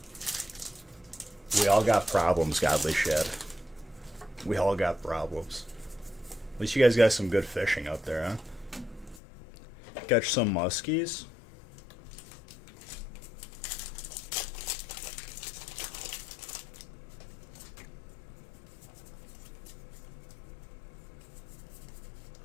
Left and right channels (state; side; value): drops out; right; at 9.2 s